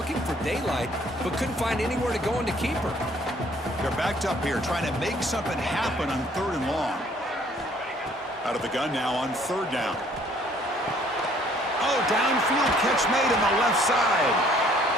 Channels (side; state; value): both; normal; correlation 0.60